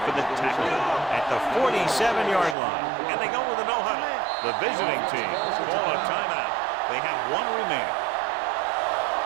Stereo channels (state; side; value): drops out; left; at 2.6 s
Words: for the tackle at the 47-yard line. And they go with a no-huddle. The visiting team call a timeout. They have one remaining.